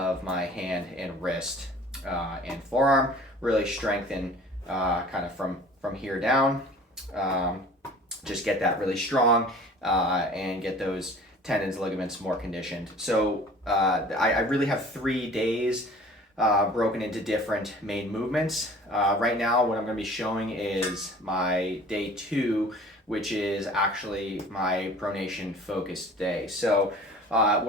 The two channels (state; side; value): normal; both; correlation 0.46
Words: my hand and wrist and forearm, really strengthen kind of from here down, just get that really strong and get those tendons, ligaments more conditioned. So I really have 3 days broken into different main movements. Right now, what I'm going to be showing is my day 2, which is actually my pronation focused day. So